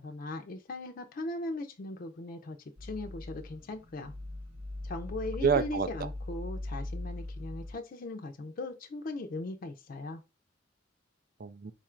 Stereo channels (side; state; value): both; normal; correlation 0.38